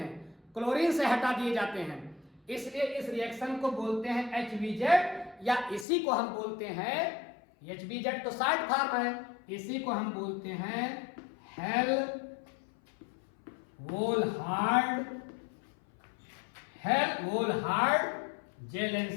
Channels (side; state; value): right; drops out; at 5.9 s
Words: क्लोरीन से हटा दिए जाते हैं। इसलिए इस रिएक्शन को बोलते हैं HVZ, या इसी को हम बोलते हैं, HVZ तो शॉर्ट फॉर्म है, इसी को हम बोलते हैं हेल्होल्ट्ज